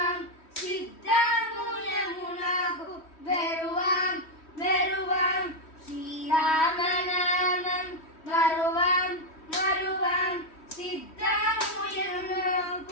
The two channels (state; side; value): late; right; 3.1 ms